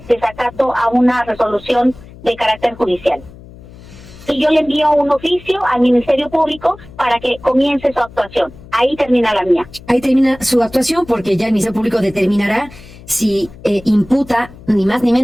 desacato a una resolución de carácter judicial. Y yo le envío un oficio al Ministerio Público para que comience su actuación. Ahí termina la mía. Ahí termina su actuación porque ya el Ministerio Público determinará si imputa ni más ni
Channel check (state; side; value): noise; left; hum, 20 dB below the sound